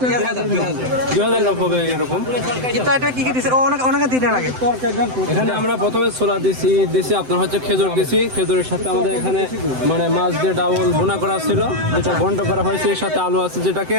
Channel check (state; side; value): late; left; 7.8 ms